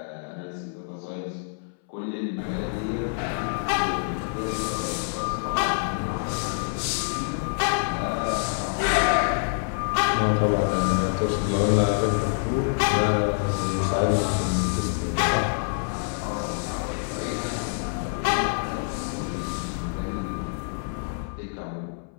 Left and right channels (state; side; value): silent; right; 61 dB below the other